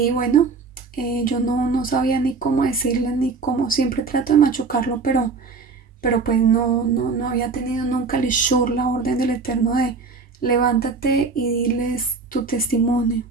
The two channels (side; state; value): left; quieter; 4.5 dB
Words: bueno, yo no sabía ni cómo decirle, ni cómo, siempre trato de machucarlo, pero pues no había tenido nunca el ishur, la orden del Eterno de levántate y diles tu testimonio.